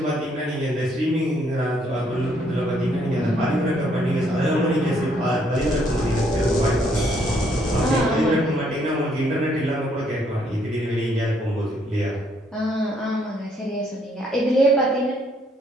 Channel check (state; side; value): normal; both; correlation 0.69